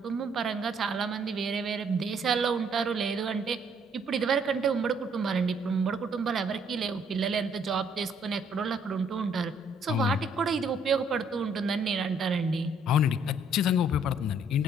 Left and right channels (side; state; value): both; normal; correlation 0.65